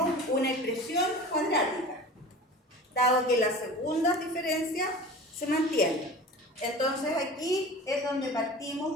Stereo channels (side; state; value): both; normal; correlation 0.37